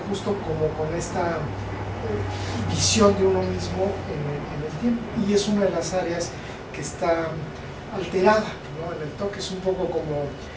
justo como con esta visión de uno mismo en el tiempo, y es una de las áreas que está alterada, ¿no? En el toque es un poco como,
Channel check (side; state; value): both; identical; correlation 1.00